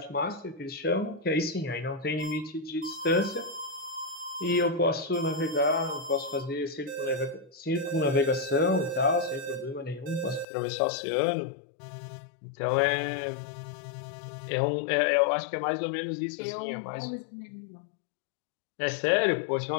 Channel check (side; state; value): right; drops out; at 10.5 s